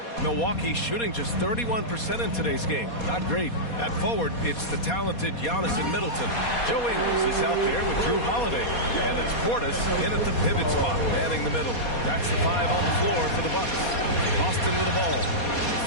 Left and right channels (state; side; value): late; right; 4.2 ms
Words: Milwaukee shooting just 31% in today's game. Not great. At forward, it's the talented Giannis and Middleton. Joe Ingles is out there with Drew Holiday. And it's Portis in at the pivot spot, manning the middle. That's the 5 on the floor for the Bucks. Boston with the ball.